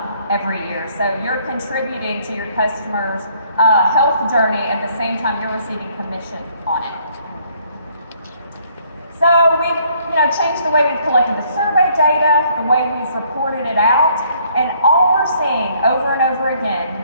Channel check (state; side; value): inverted; both; correlation -0.65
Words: every year. So you're contributing to your customer's health journey at the same time you're receiving commission on it. So we've changed the way we've collected the survey data, the way we've reported it out, and all we're seeing over and over